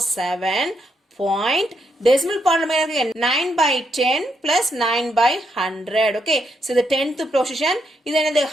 point decimal part நம்ம இருக்கு 9/10 plus 9/100 okay so the 10th position இது என்னது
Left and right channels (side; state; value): both; normal; correlation 0.79